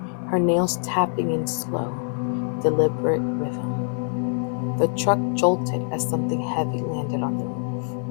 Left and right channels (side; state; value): right; silent; digital silence